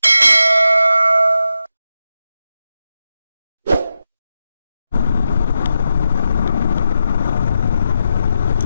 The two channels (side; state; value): both; inverted; correlation -0.87